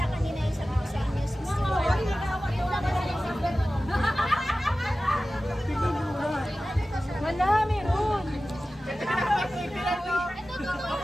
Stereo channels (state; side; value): normal; both; correlation 0.95